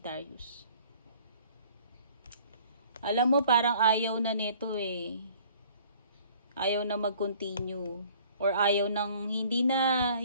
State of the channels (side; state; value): both; inverted; correlation -0.54